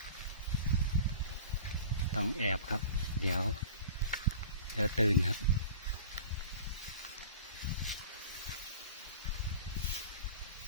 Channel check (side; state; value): both; inverted; correlation -0.40